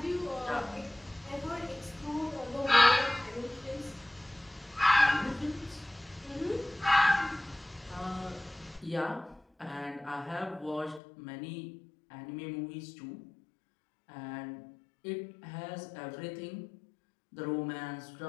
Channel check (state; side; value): drops out; right; at 11.0 s